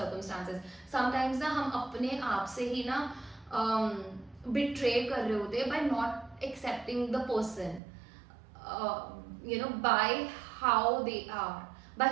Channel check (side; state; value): left; drops out; at 7.8 s